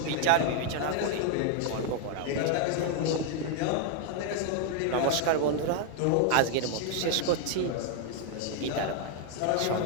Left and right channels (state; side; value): different; both; correlation 0.00